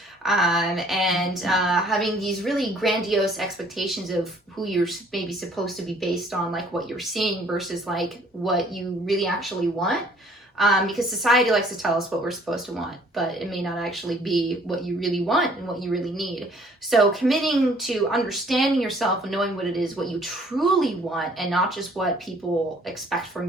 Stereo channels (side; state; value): both; normal; correlation 0.58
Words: and having these really grandiose expectations of who you're maybe supposed to be based on, like what you're seeing versus like what you really actually want. Because society likes to tell us what we're supposed to want, but it may not actually be what you really want and what you really need. So committing to understanding yourself and knowing what it is, what you truly want, and not just what people expect